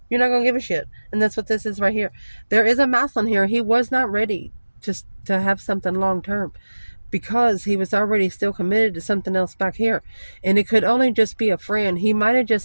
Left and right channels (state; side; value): inverted; both; correlation -1.00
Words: You're not going to give a shit. And that's what this is right here. There is a mouth on here. He was not ready to have something long term because he was already still committed to something else back here. And it could only just be a friend. He might have